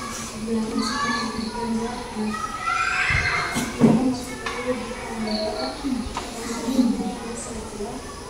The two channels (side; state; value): both; identical; correlation 1.00